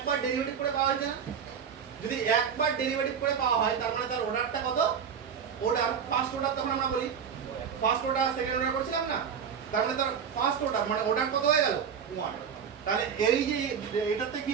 ডেরিভেটিভ করে পাওয়া হয়েছে না, যদি একবার ডেরিভেটিভ করে পাওয়া হয় তার মানে তার অর্ডারটা কত, অর্ডার ফার্স্ট অর্ডার, তখন আমরা বলি ফার্স্ট অর্ডার সেকেন্ড অর্ডার করছিলাম না, তার মানে তার ফার্স্ট অর্ডার মানে অর্ডার কত হয়ে গেল 1। তাহলে এই যে এটাতে কি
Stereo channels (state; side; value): quieter; left; 7.2 dB